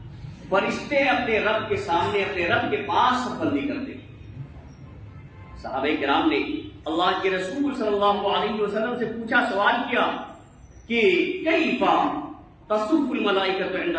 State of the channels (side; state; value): both; identical; correlation 1.00